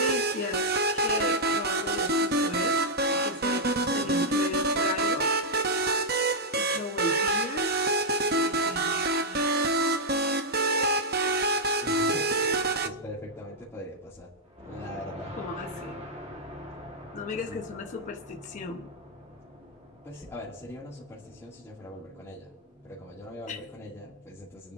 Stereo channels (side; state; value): both; normal; correlation -0.03